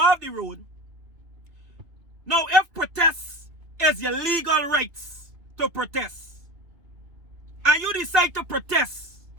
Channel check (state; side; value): late; left; 2.8 ms